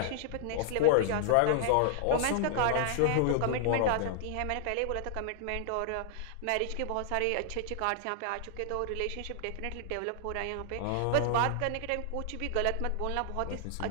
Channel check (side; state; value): both; different; correlation -0.01